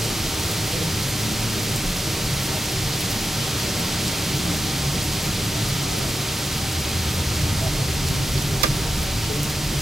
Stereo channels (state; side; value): normal; both; correlation 0.89